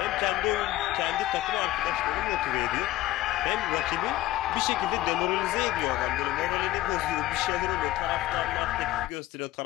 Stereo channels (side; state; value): right; quieter; 15.8 dB